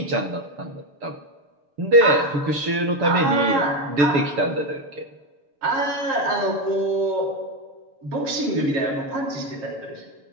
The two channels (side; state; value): left; late; 6.9 ms